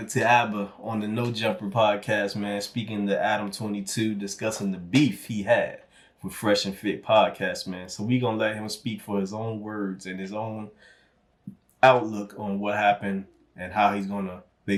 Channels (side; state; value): both; identical; correlation 1.00